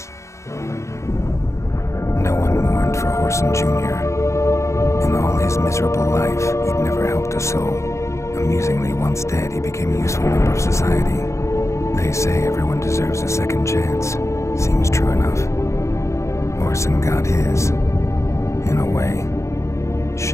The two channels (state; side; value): late; right; 0.14 ms